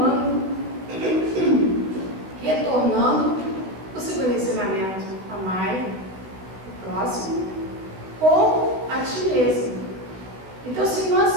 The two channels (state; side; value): late; left; 16 ms